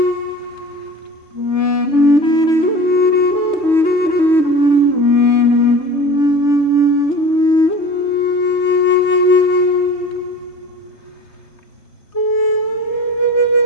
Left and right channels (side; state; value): right; late; 3.3 ms